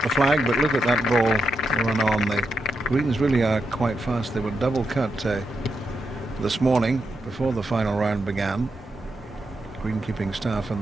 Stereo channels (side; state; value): both; normal; correlation 0.83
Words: the flag, but look at that ball run on. The greens really are quite fast. They were double cut this morning before the final round began. Greenkeeping staff